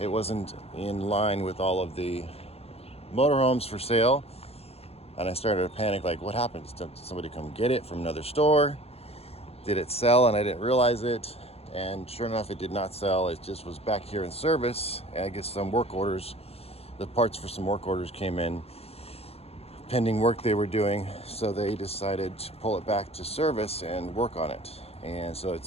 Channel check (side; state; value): right; late; 0.29 ms